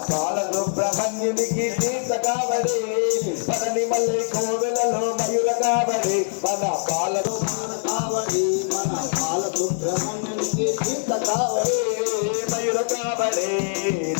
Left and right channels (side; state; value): right; silent; 63 dB below the other